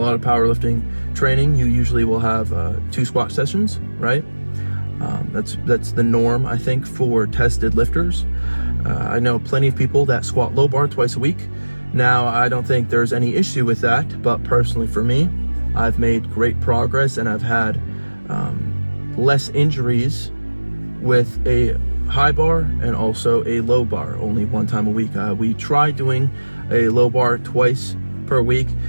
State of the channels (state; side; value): inverted; both; correlation -1.00